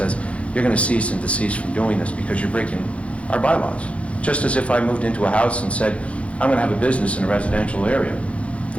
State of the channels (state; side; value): late; right; 0.062 ms